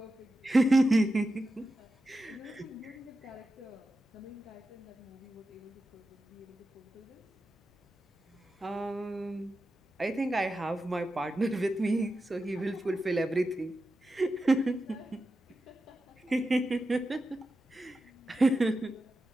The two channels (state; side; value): normal; both; correlation 0.91